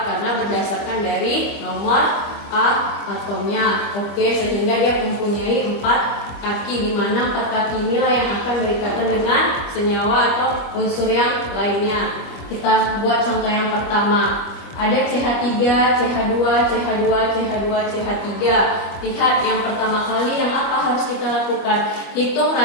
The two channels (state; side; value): late; right; 25 ms